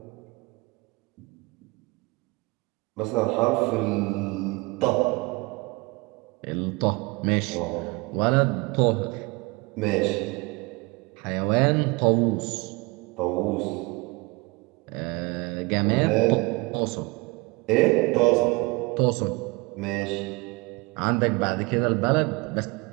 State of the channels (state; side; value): quieter; left; 25.4 dB